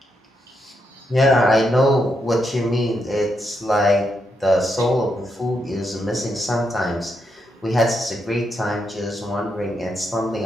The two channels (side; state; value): both; normal; correlation 0.81